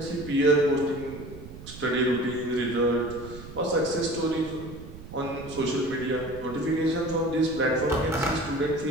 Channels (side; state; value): right; noise; rumble, 14 dB below the sound